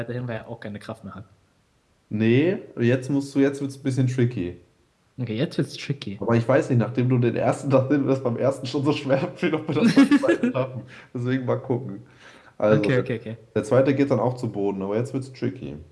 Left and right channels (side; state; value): both; identical; correlation 1.00